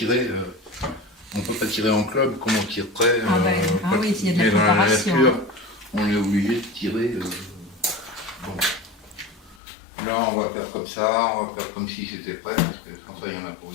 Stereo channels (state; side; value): drops out; right; at 9.6 s